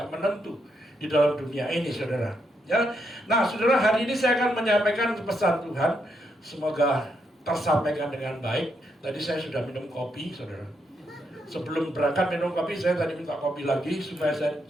menentu di dalam dunia ini, saudara. Ya, nah, saudara, hari ini saya akan menyampaikan pesan Tuhan. Semoga tersampaikan dengan baik. Tadi saya sudah minum kopi, saudara. Sebelum berangkat minum kopi, saya tadi minta kopi lagi supaya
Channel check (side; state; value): both; normal; correlation 0.79